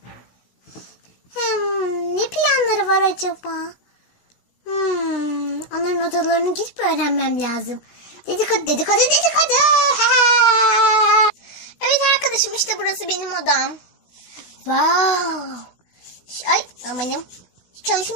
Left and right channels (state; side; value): late; right; 16 ms